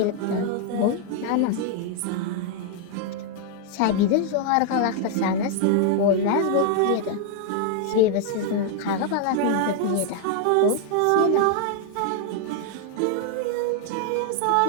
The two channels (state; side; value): different; both; correlation 0.00